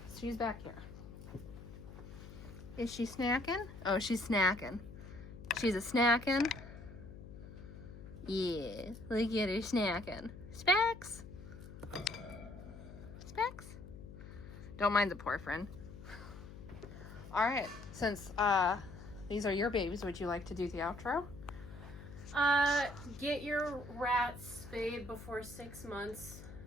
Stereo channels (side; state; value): left; noise; hum, 14 dB below the sound